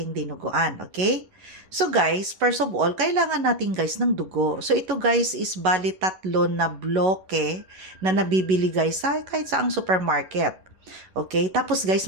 dinuguan, okay? So guys, first of all, kailangan natin guys ng dugo. So ito guys is bali 3 na bloke na nabibili guys sa kahit saang supermarket. Okay? Tapos guys,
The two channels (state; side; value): late; left; 11 ms